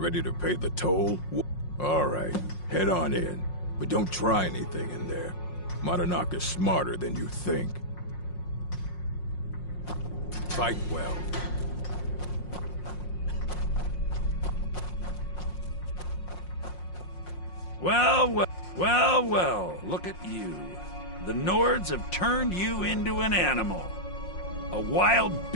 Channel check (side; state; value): right; late; 5.6 ms